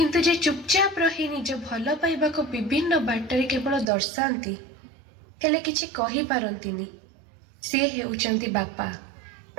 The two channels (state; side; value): drops out; left; at 3.9 s